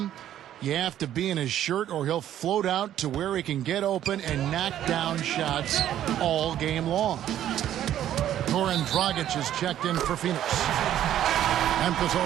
You have to be in his shirt or he'll float out to where he can get open and knock down shots all game long. Goran Dragic is checked in for Phoenix. Memphis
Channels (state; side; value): quieter; left; 11.5 dB